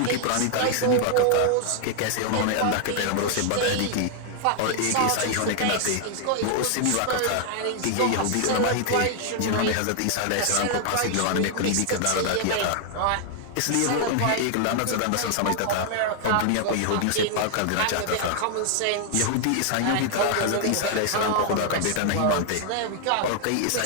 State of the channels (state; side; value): different; both; correlation 0.00